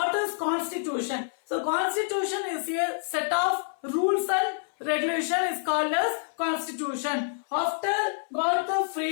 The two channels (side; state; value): right; silent; 58 dB below the other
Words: is constitution? So constitution is a set of rules and regulation is called as constitution. After got the